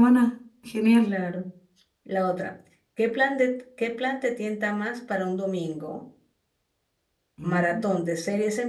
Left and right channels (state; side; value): identical; both; correlation 1.00